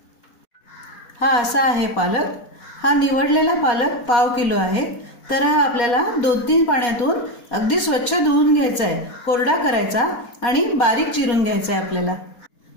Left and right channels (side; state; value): right; late; 4.2 ms